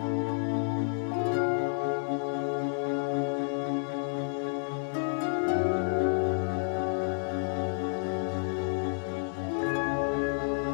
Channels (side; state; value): right; silent; digital silence